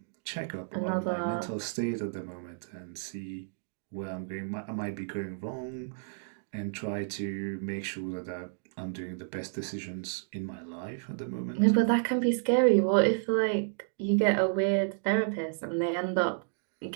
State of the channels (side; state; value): left; silent; digital silence